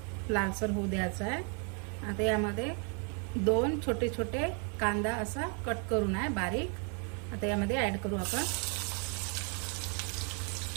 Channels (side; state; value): left; quieter; 38.6 dB